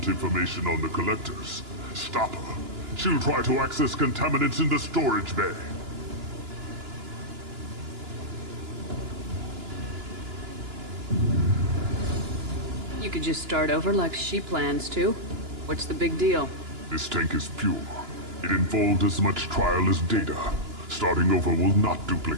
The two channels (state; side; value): late; left; 2.9 ms